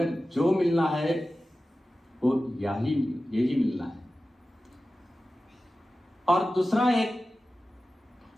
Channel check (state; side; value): normal; both; correlation 0.95